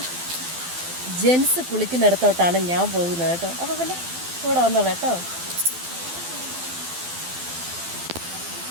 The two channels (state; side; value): late; left; 12 ms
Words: ജെൻസ് കുളിക്കുന്നിടത്തോട്ടാണ് ഞാൻ പോകുന്നത് കേട്ടോ. അപ്പോൾ പിന്നെ കൂടെ വന്നോളൂ കേട്ടോ.